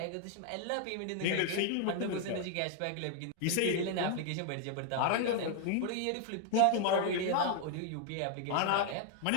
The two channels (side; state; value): both; different; correlation 0.00